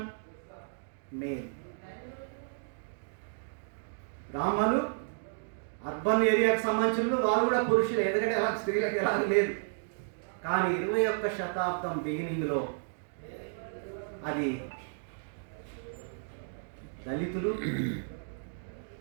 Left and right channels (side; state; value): left; silent; digital silence